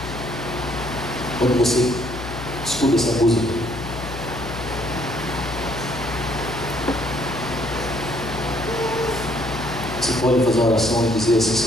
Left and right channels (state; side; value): noise; left; hum, 9 dB below the sound